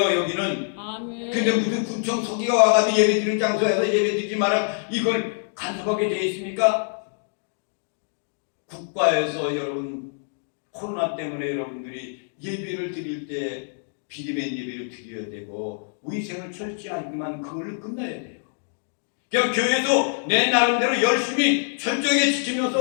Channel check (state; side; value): silent; right; digital silence